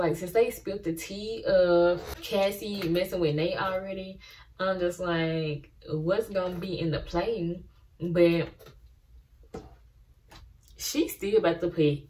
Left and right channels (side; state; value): both; identical; correlation 1.00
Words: since they spilled the tea of Cassie messing with Nate already, I'm just like, what's gonna be in the play? But she's still about to put